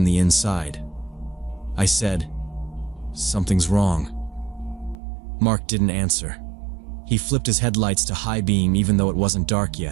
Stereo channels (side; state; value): left; drops out; at 5.0 s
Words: the inside. I said, "Something's wrong." Mark didn't answer. He flipped his headlights to high beam even though it wasn't dark